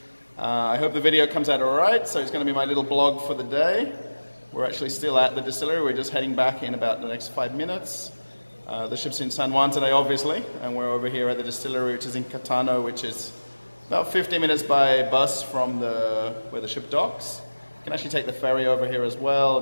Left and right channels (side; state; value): both; inverted; correlation -1.00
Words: I hope the video comes out alright, so it's going to be my little blog for the day. We're actually still at the distillery, we're just heading back in about the next 5 minutes. The ship's in San Juan today, obviously, and we're over here at the distillery, which is in Catano, which is about 15 minutes by bus from where the ship docks. You can actually take the ferry over here as well